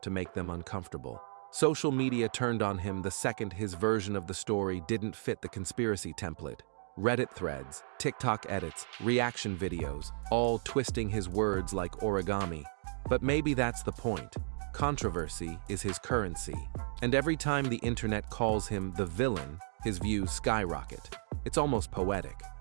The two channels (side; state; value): left; silent; digital silence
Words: to make them uncomfortable. Social media turned on him the second his version of the story didn't fit the conspiracy template. Reddit threads, TikTok edits, reaction videos, all twisting his words like origami. But maybe that's the point. Controversy is his currency. And every time the internet calls him the villain, his views skyrocket. It's almost poetic.